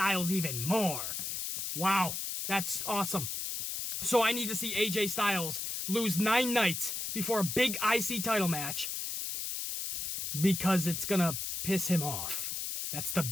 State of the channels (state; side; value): noise; left; hiss, 3 dB below the sound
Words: even more. Wow, that's awesome. So I need to see AJ Styles lose 9 nights before a big IC title match because it's gonna piss him off. That's the